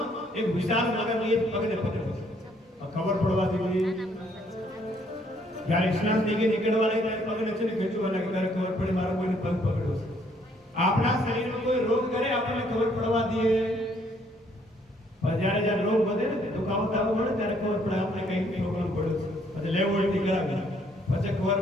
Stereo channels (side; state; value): both; normal; correlation 0.66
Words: એક વિશાળ મગરને એક પગને પકડે છે. ખબર પડવા દીધી જ્યારે સ્નાન થઈ ગઈ નીકળવા લાગી ત્યારે પગને છે ને ખેંચવા લાગી. ત્યારે ખબર પડે મારો કોઈને પગ પકડ્યો છે. આપણા શરીરમાં કોઈ રોગ કરે આપણને ખબર પડવા દઈએ, પણ જ્યારે રોગ વધે ને દુખાવો થવો મળે ત્યારે ખબર પડે આપણે કઈ પ્રોબ્લેમ પડ્યો છે. પછી લેવોલ્ટી કરાવી પછી ખબર